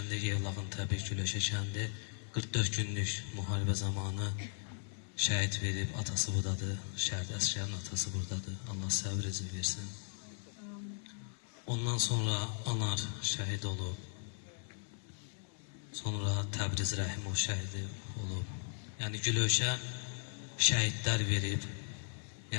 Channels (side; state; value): right; silent; 53 dB below the other